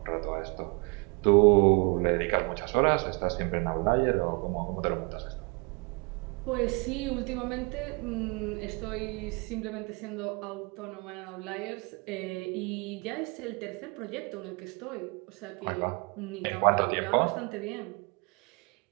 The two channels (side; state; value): left; quieter; 31.3 dB